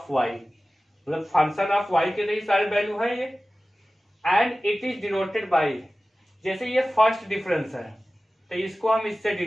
वाई, मतलब फंक्शन ऑफ वाई के लिए सारे वैल्यू है ये। And it is denoted by, जैसे ये फर्स्ट डिफरेंस है तो इसको हम इससे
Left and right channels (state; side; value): normal; both; correlation 0.96